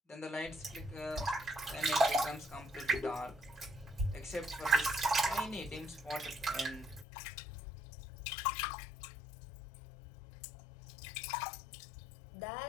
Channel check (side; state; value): right; drops out; at 7.1 s